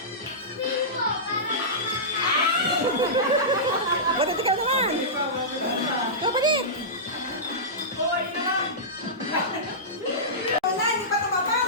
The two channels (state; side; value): normal; both; correlation -0.17